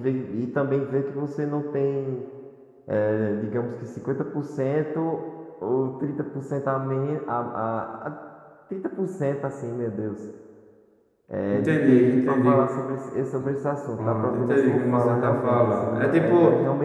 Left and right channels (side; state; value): both; identical; correlation 1.00